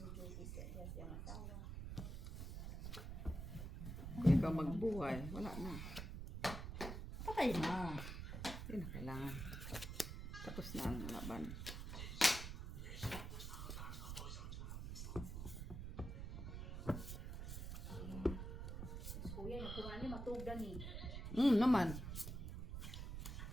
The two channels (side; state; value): right; noise; rumble, 6 dB below the sound